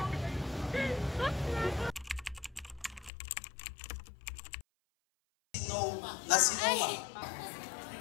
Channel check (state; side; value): drops out; right; at 3.1 s